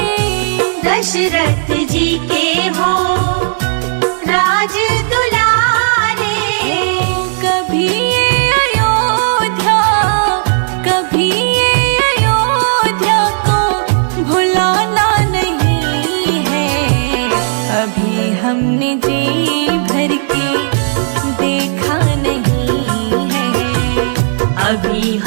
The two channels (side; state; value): left; silent; digital silence